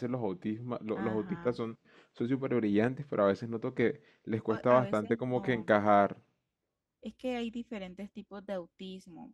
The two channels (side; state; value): both; identical; correlation 1.00